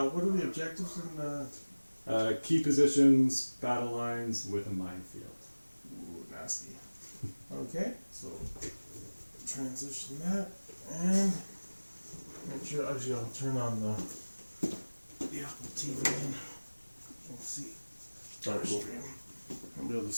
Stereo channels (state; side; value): inverted; both; correlation -1.00